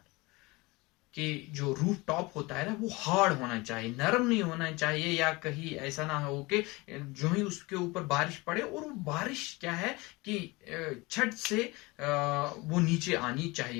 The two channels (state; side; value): quieter; right; 23.6 dB